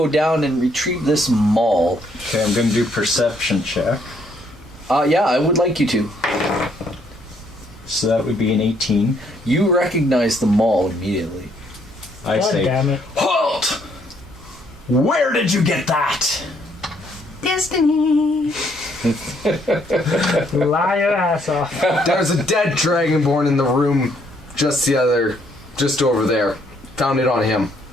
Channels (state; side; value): normal; both; correlation 0.69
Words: down and retrieve this maul. Okay, I'm going to do perception check. Yeah, I would like you to. So that would be an 18. You recognize the maul immediately. I God say, damn it. halt! Where did you get that? Destiny! Lie your ass off. There's a dead dragonborn in the room just over there. Found it on him.